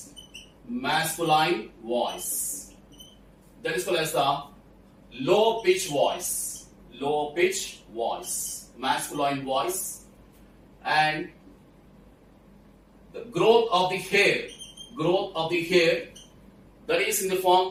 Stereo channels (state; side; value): identical; both; correlation 1.00